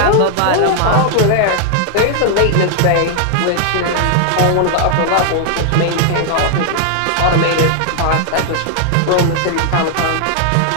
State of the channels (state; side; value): different; both; correlation 0.00